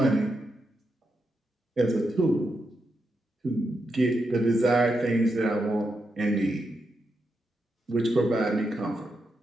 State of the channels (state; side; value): normal; both; correlation 0.85